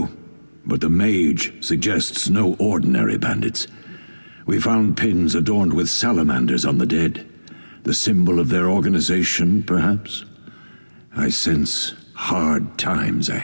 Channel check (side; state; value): both; inverted; correlation -1.00